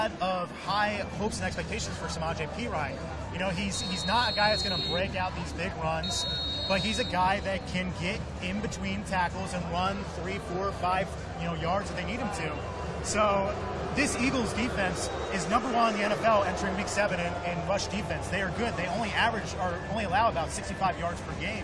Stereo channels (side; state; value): both; identical; correlation 1.00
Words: of high hopes and expectations for Samaje Perine. He's not a guy that's going to break out these big runs, but he's a guy that can get in between tackles and run 3, 4, 5, yards that they need him to. So this Eagles defense is number 1 in the NFL entering Week 7 in rush defense. They are good. They only allow about 65 yards per